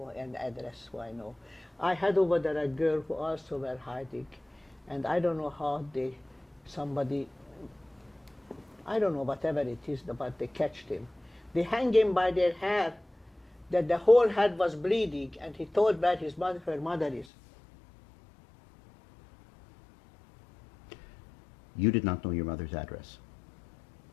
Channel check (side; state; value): right; drops out; at 17.2 s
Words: and address who I know. I had over there a girl who also were hiding, and I don't know how somebody, I don't know, whatever it is, but they catched him. They hang him by their hair, that the whole head was bleeding, and he told where her mother is. You did not know your mother's address,